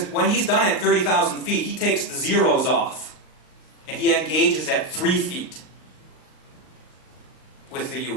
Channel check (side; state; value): right; late; 38 ms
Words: when he's done at 30,000 feet, he takes the zeros off. And he engages at 3 feet with the